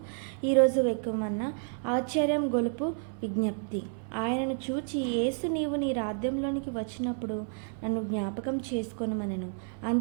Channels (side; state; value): left; silent; 58 dB below the other